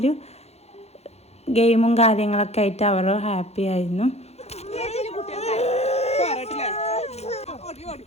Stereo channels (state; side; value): late; right; 0.31 ms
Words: ഗെയിമും കാര്യങ്ങളൊക്കെ ആയിട്ട് അവർ ഹാപ്പി ആയിരുന്നു.